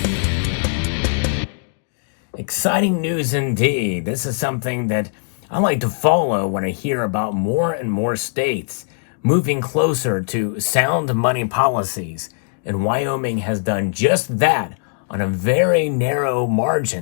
Exciting news indeed. This is something that I like to follow when I hear about more and more states moving closer to sound money policies. And Wyoming has done just that on a very narrow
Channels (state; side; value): silent; right; digital silence